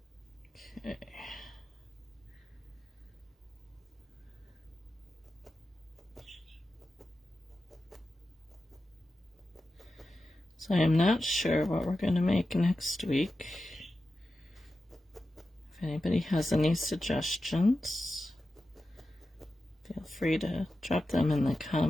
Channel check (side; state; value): both; normal; correlation 0.92